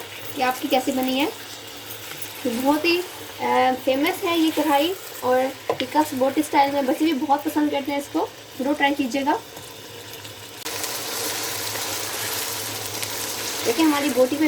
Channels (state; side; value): identical; both; correlation 1.00